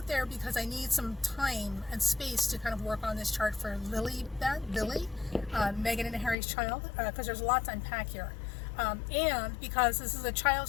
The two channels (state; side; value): drops out; right; at 6.4 s